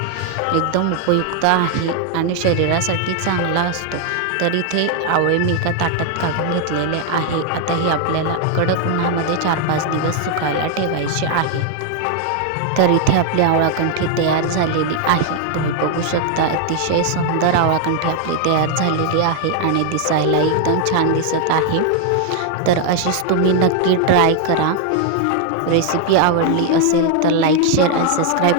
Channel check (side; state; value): both; different; correlation 0.00